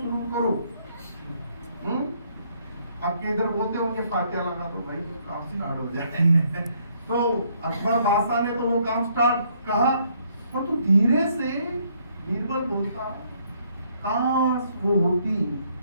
करो, आपके इधर बोलते होंगे फातिहा लगा दो भाई काम स्टार्ट हो जाए तो अकबर बादशाह ने तो वो काम स्टार्ट कहा, और तो धीरे से बीरबल बोलता काश वो होती,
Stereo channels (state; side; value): inverted; both; correlation -0.68